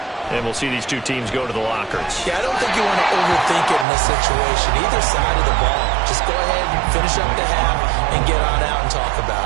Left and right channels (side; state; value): left; drops out; at 3.9 s